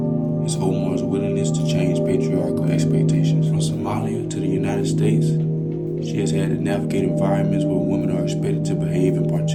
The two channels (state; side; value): identical; both; correlation 1.00